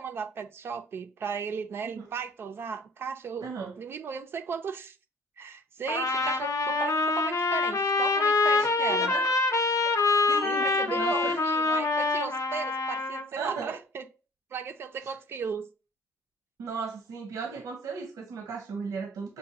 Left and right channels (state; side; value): normal; both; correlation 0.48